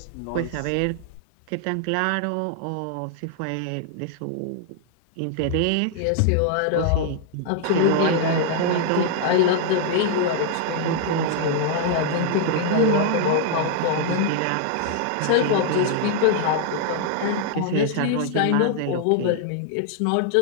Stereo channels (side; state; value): both; different; correlation 0.00